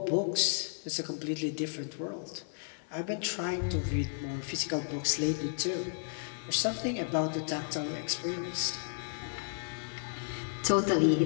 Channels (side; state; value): right; silent; 56 dB below the other